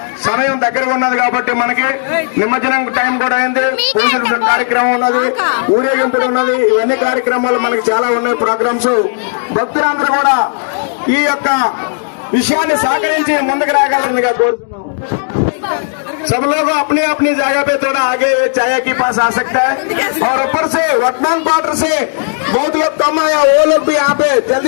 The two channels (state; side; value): silent; right; digital silence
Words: సమయం దగ్గరగా ఉన్నది కాబట్టి మనకి నిమజ్జనం టైం కూడా అయింది, పూజల కార్యక్రమం ఉన్నది, ఊరేగింపులు ఉన్నది, ఇవన్నీ కార్యక్రమాలు మనకి చాలా ఉన్నాయి ప్రోగ్రామ్స్. భక్తులందరూ కూడా ఈ యొక్క విషయాన్ని సహకరించి ముందుకు రాగలరుగా కోరుతున్నాం. सब लोग अपनी अपनी जगह पे थोड़ा आगे चाय के पास आ सकते हैं और ऊपर से वर्तमान क्वार्टर से बहुत लोग कम आया, वो लोग भी यहाँ पे